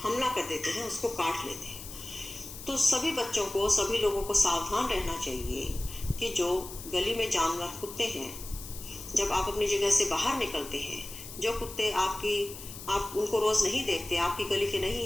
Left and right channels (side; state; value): left; noise; hiss, 12 dB below the sound